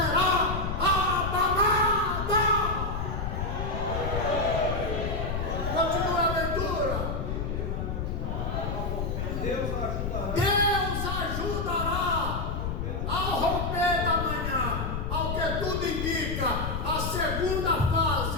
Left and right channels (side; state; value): left; noise; rumble, 2 dB below the sound